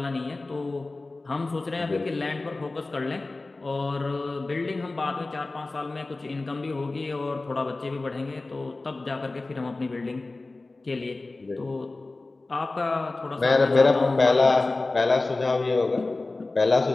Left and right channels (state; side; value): quieter; right; 3.3 dB